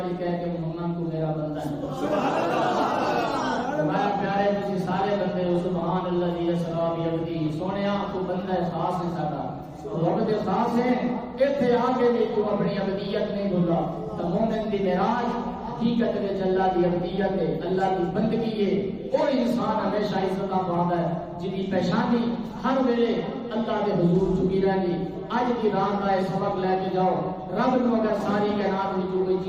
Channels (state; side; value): identical; both; correlation 1.00